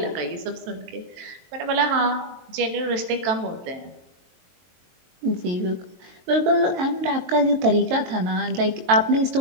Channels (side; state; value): left; late; 22 ms